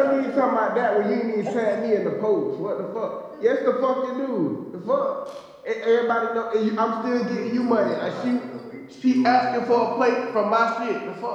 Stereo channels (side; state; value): both; identical; correlation 1.00